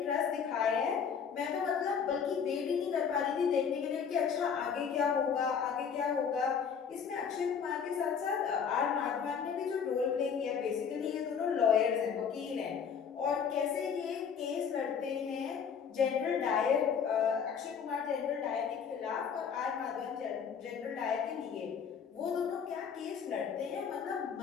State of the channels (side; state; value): right; quieter; 6.9 dB